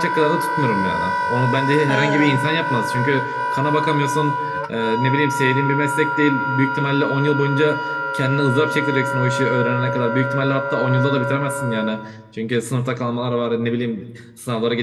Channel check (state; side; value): identical; both; correlation 1.00